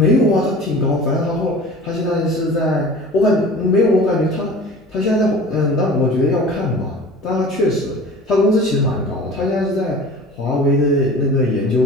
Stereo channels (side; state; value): both; normal; correlation 0.41